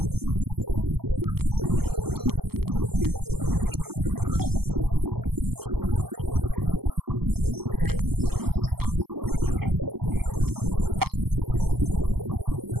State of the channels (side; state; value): left; late; 0.96 ms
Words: men and affairs, and equally at home in many provinces of science. He was an accomplished scholar, historian, public speaker, writer, and teacher.